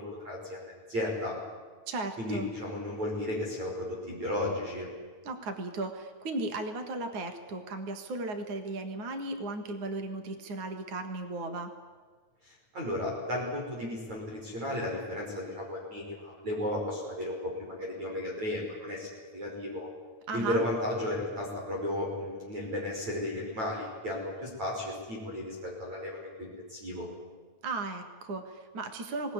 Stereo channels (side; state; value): left; late; 9.1 ms